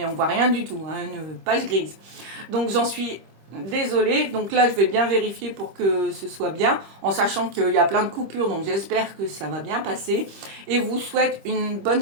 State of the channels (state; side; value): late; left; 25 ms